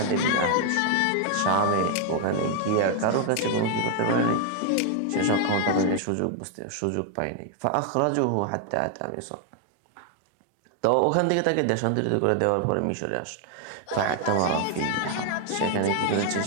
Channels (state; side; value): different; both; correlation 0.00